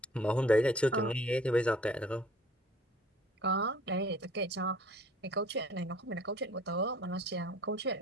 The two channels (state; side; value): normal; both; correlation 0.51